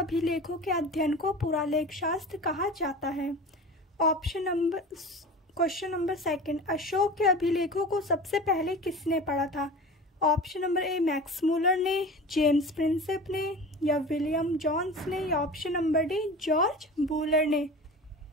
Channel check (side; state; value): both; normal; correlation 0.35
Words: के अध्ययन को पुरालेख शास्त्र कहा जाता है। क्वेश्चन नंबर सेकंड, अशोक के अभिलेखों को सबसे पहले किसने पढ़ा था? ऑप्शन नंबर ए मैक्स मूलर ने, जेम्स प्रिंसेप ने, या विलियम जोन्स ने, या option number D George Wular ने।